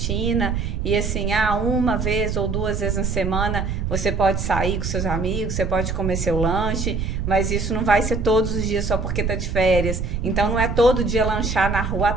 e assim, uma vez ou 2 vezes na semana você pode sair com seus amigos, você pode comer seu lanche, mas isso não vai ser todos os dias só porque tá de férias. Então não é todo dia lanchar na rua à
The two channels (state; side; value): noise; right; rumble, 2 dB below the sound